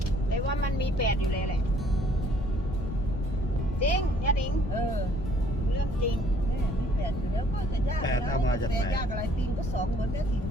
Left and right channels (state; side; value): noise; left; rumble, 5 dB below the sound